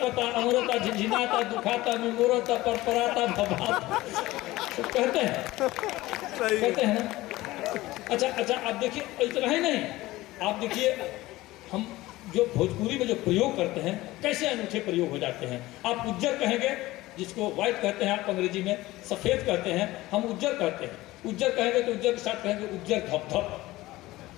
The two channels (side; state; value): right; quieter; 18.1 dB